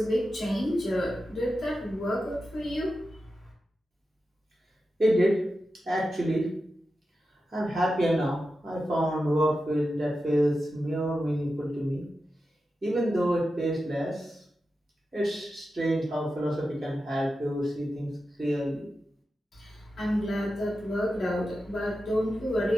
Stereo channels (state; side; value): normal; both; correlation 0.91